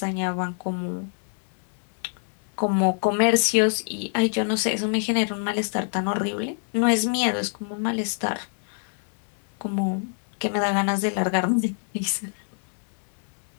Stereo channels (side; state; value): right; silent; 61 dB below the other